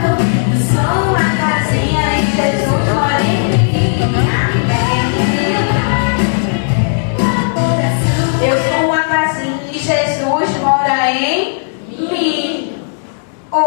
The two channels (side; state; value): right; silent; digital silence